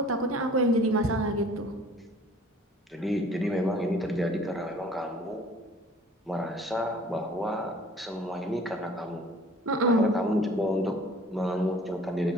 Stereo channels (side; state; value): both; normal; correlation 0.51